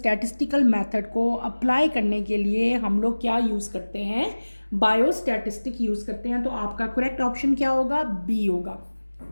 मेथड को अप्लाई करने के लिए हम लोग क्या यूज़ करते हैं, बायोस्टैटिस्टिक यूज़ करते हैं। तो आपका करेक्ट ऑप्शन क्या होगा, बी होगा।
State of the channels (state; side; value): inverted; both; correlation -1.00